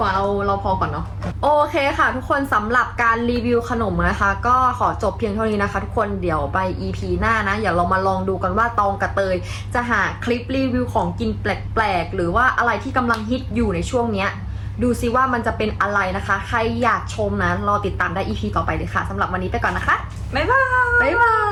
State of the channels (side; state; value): both; identical; correlation 1.00